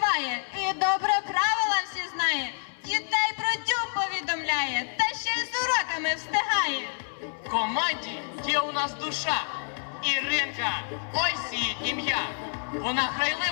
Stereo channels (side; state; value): right; silent; digital silence